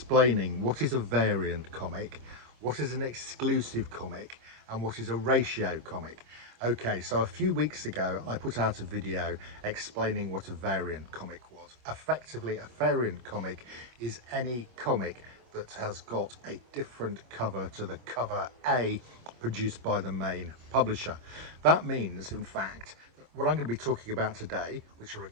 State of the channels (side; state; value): left; late; 25 ms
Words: what is a variant comic, what is an exclusive comic, and what is a ratio comic. Okay, so a few weeks ago I put out a video explaining what a variant comic was. Effectively, a variant comic is any comic that has got a different cover to the cover A produced by the main publisher. That means, in fact, that what I'm going to be talking about today, which are